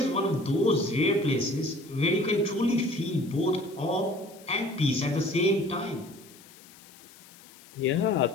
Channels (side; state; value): left; noise; hiss, 22 dB below the sound